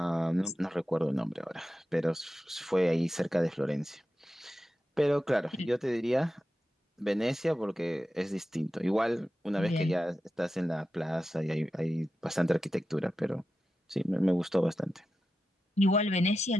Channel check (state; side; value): normal; both; correlation 0.91